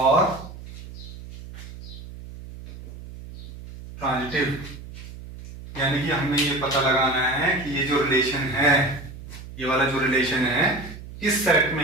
ट्रांजिटिव। यानी कि हमें ये पता लगाना है कि ये जो रिलेशन है, ये वाला जो रिलेशन है किस सेट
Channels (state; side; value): noise; right; hum, 14 dB below the sound